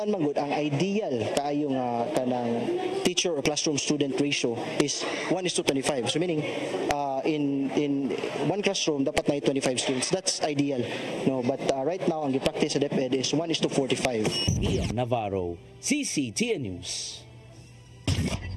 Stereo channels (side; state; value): both; identical; correlation 1.00